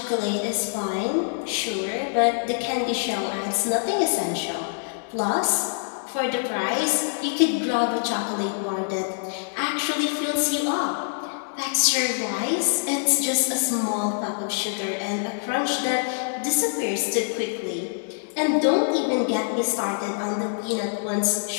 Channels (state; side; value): silent; right; digital silence